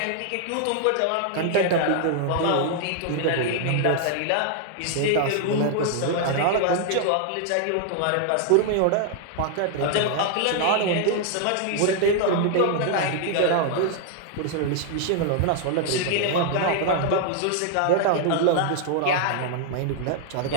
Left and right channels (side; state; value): both; different; correlation 0.00